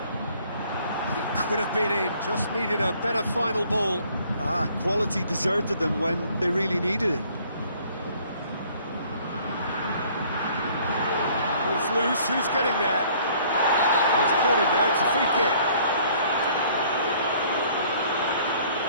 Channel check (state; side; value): inverted; both; correlation -0.58